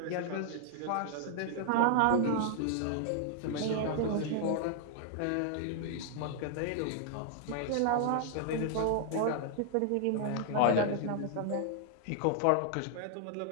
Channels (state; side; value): different; both; correlation 0.00